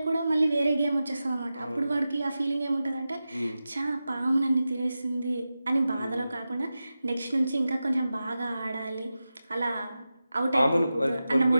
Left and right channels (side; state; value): both; inverted; correlation -0.93